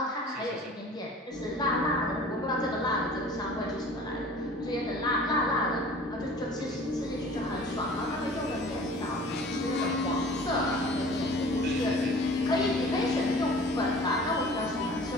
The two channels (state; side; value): normal; both; correlation 0.46